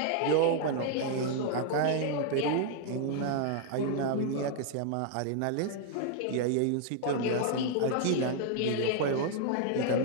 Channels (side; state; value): both; different; correlation 0.00